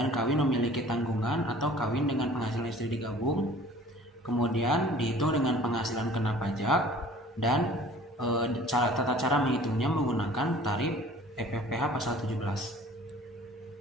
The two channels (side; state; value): both; normal; correlation 0.48